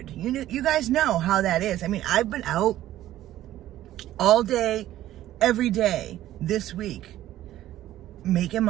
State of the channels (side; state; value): left; quieter; 13.7 dB